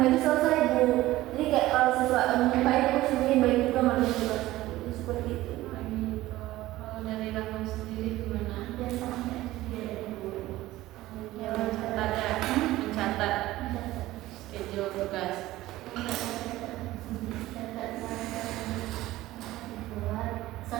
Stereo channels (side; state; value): left; quieter; 16.7 dB